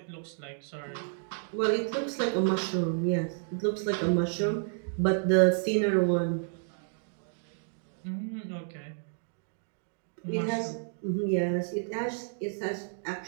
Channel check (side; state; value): left; silent; digital silence